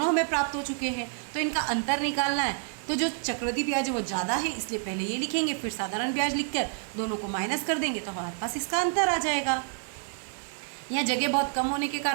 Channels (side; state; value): left; silent; 55 dB below the other